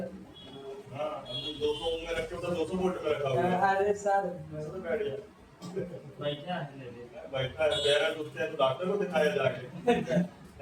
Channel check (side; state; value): both; identical; correlation 1.00